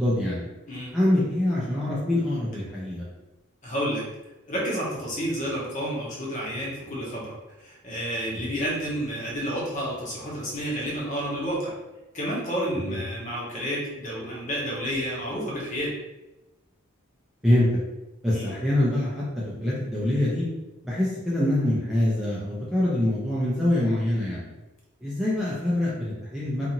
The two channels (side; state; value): both; normal; correlation 0.76